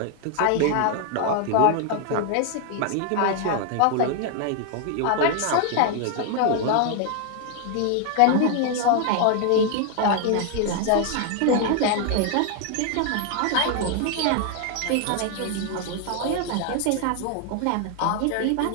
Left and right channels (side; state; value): both; different; correlation 0.00